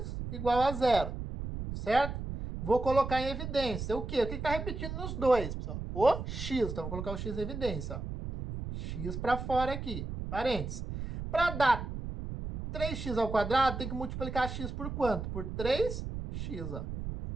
igual a 0. Certo? Vou colocar em evidência o quê? O que está repetindo nos dois, pessoal? O x. Então, vou colocar o x em evidência. Ó. X para fora aqui. Parênteses. Para dar 3x², tem que multiplicar x por quanto? Por 3x. Ó.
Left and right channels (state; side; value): noise; right; rumble, 6 dB below the sound